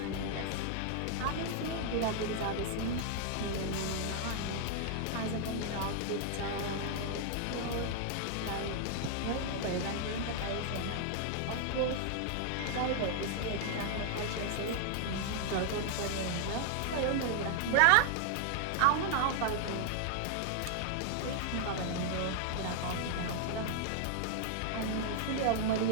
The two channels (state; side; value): different; both; correlation -0.01